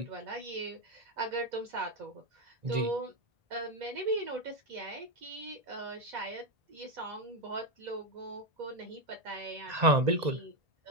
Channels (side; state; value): left; late; 1.9 ms